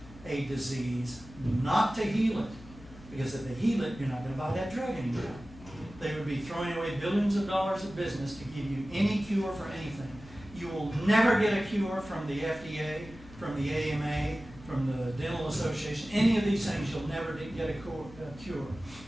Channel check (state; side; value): noise; left; hum, 19 dB below the sound